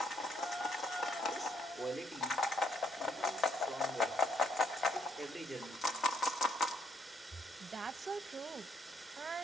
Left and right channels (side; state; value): both; normal; correlation 0.70